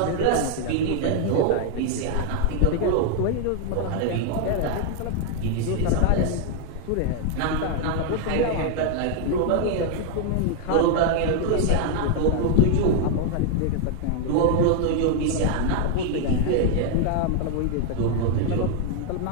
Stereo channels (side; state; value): both; different; correlation 0.00